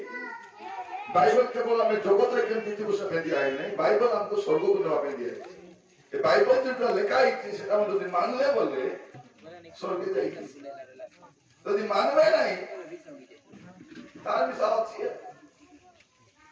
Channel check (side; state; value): both; identical; correlation 1.00